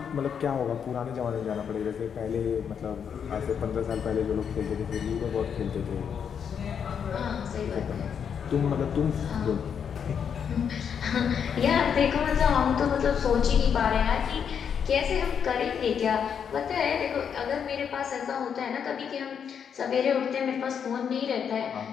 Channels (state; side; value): quieter; right; 7.5 dB